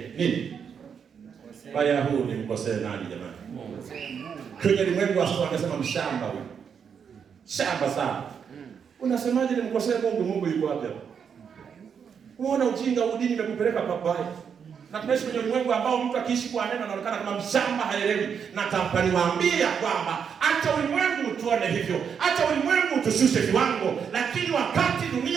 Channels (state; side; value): quieter; left; 7.1 dB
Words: nini? Baya huu ni mkosee nani jamani? Kwenye ulimwengu wao wanasema mshamba huyu. Shamba sana. Unasemaje ni mkosee Mungu? Mungu yuko wapi hapo? Unaona ujinga udini umekupeleka pabaya. Na tunaishi kwenye ulimwengu ambao mtu akiishi kwa neno anaonekana kama mshamba, haelewi. Na niwaambia kwamba acha ulimwengu tuone hivyo. Acha ulimwengu tushushe viwango, lakini wakati